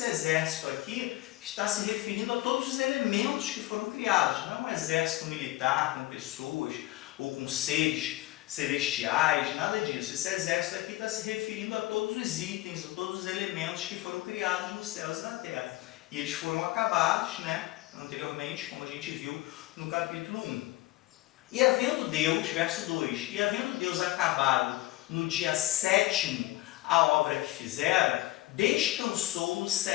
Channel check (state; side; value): quieter; right; 18.3 dB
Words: exército aqui está se referindo a todos os elementos que foram criados. Não é um exército militar com pessoas ou com seres celestiais, nada disso. Esse exército aqui está se referindo a todos os itens, a todos os elementos que foram criados nos céus e na terra. E eles foram acabados, anteriormente, como a gente viu no capítulo 1. E havendo Deus, verso 2, e havendo Deus acabado no dia 7º a obra que fizera, descansou no